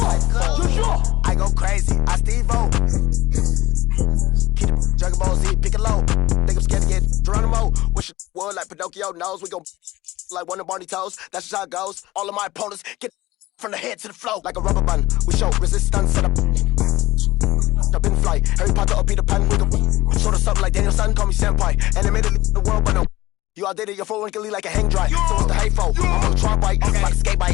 phone. I go crazy, I Steve-O. Keep the Dragon Ball Z, pick it low. Think I'm scared to get Geronimo. Wish it would like Pinocchio knows. We gon' like one of Barney toes. That's just how it goes. All of my opponents get from the head to the flow like a rubber band. We show resistance set up. Up in flight. Harry Potter or Peter Pan. We gon' sort of something like Daniel Son. Call me senpai. Animated the world, but no. You all did it, you're full wrinkly like a hang dry. So what's the hay for? I'm on a tron bike, like a skate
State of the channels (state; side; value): quieter; right; 17.7 dB